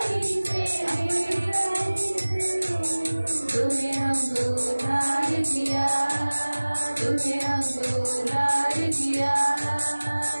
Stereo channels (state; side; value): inverted; both; correlation -1.00